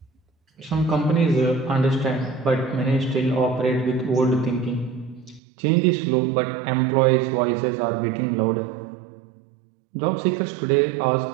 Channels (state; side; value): drops out; left; at 5.4 s